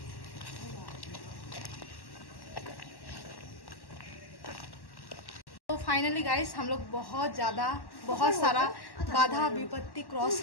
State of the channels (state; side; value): late; right; 1.1 ms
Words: तो फाइनली गाइस, हम लोग बहुत सारा बाधा विपत्ति क्रॉस